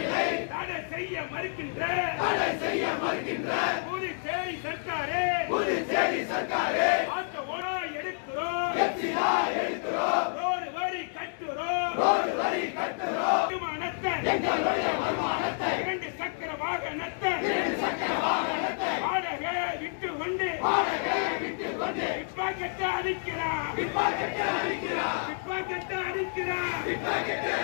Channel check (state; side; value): silent; right; digital silence